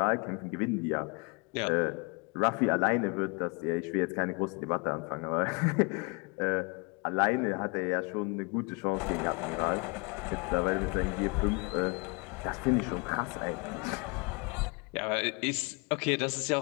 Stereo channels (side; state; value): right; quieter; 29.9 dB